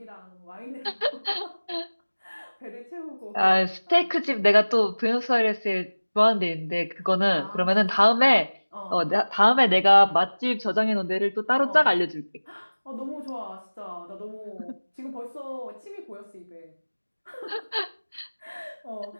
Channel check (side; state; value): both; inverted; correlation -1.00